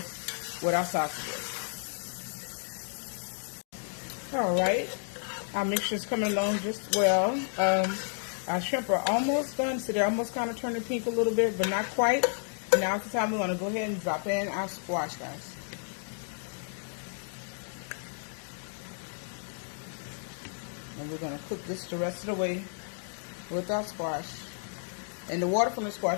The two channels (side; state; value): right; silent; digital silence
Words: with our sausages. Alright, our mixture is coming along just well. Our shrimp are almost done, so they're almost kind of turning pink a little bit, but not quite. And now it's the time we're going to go ahead and drop in our squash, guys. And we're going to cook this the rest of the way with our squash. And the water from the